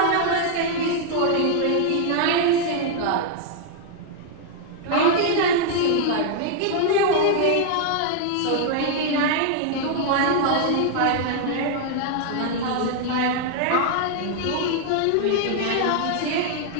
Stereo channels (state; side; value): different; both; correlation 0.00